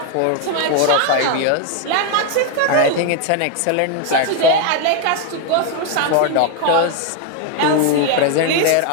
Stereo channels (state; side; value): different; both; correlation 0.01